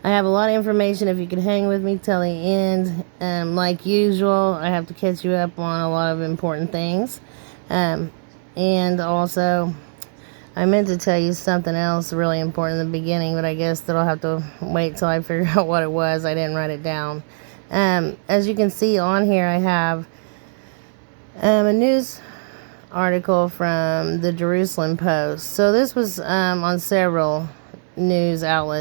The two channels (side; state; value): left; silent; digital silence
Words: I have a lot of information. If you could hang with me till the end, like usual, I have to catch you up on a lot of important things. And also, I meant to tell you something else really important in the beginning, but I guess that I'll have to wait till I figure out what it was. I didn't write it down. As you can see on here, I have a news article from the Jerusalem Post. So this was on several news